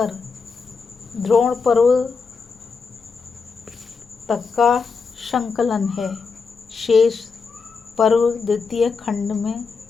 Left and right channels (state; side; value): quieter; right; 5.0 dB